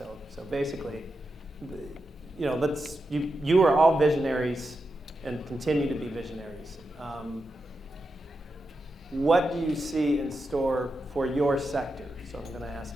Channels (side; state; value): both; normal; correlation 0.88